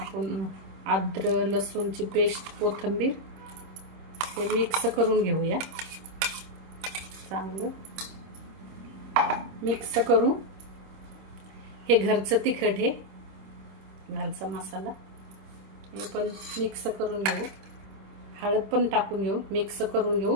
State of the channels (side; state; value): left; late; 26 ms